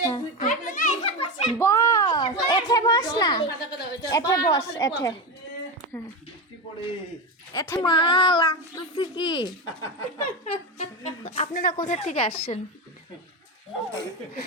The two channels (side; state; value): both; normal; correlation 0.17